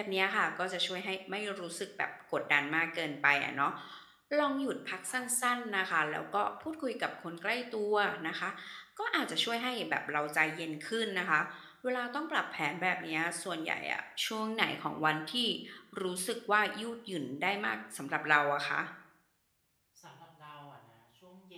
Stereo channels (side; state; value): both; identical; correlation 1.00